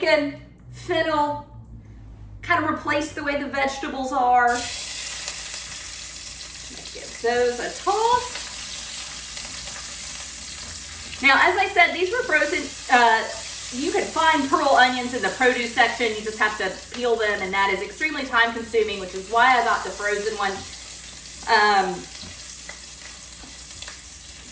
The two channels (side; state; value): both; identical; correlation 1.00